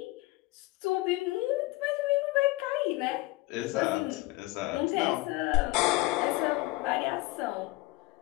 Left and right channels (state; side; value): quieter; right; 19.8 dB